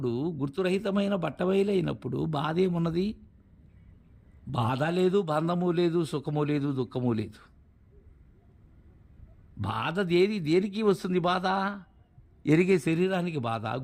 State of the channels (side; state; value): both; identical; correlation 1.00